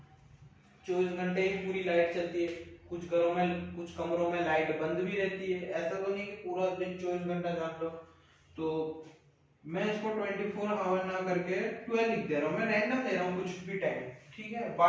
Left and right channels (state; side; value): identical; both; correlation 1.00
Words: 24 घंटे ही पूरी लाइट चलती है, कुछ घरों में कुछ कमरों में लाइट बंद भी रहती है, ऐसा तो नहीं कि पूरा दिन 24 घंटा जान लो। तो मैं इसको 24 आवर ना करके 12 लिख दे रहा हूँ, मैं रैंडम ले रहा हूँ कुछ भी टाइम, ठीक है,